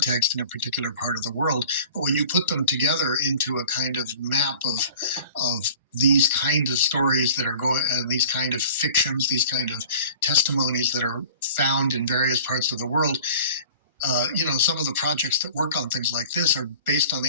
in a particular part of the world. But when you put them together into a kind of map of these kinds of stories that are going, these kind of fictions, these kind of testimonies that are found in various parts of the world, you know, some of the projects that work on things like this are based on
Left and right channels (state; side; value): inverted; both; correlation -0.44